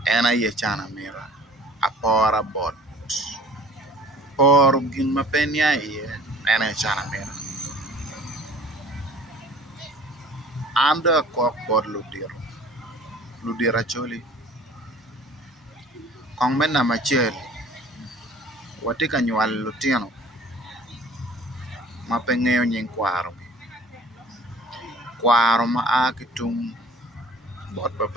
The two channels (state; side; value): normal; both; correlation 0.49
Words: en aye cana mira apora bot poro gin ma pe nia iye en cana mira an do akok bod ludiro acholi kong me namba acel wati ka nywal lutino ma pe ng'eyo nying kwaro ma a ki tung bot